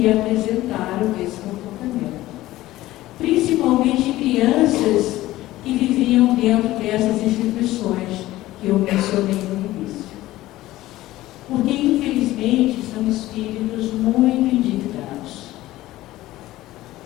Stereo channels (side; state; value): right; quieter; 16.3 dB